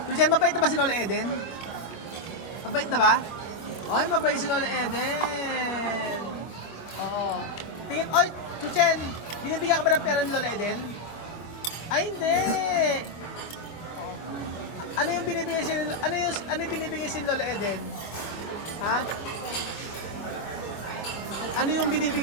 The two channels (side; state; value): right; late; 25 ms